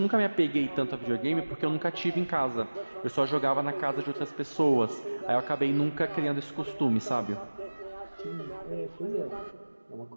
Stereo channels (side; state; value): both; inverted; correlation -1.00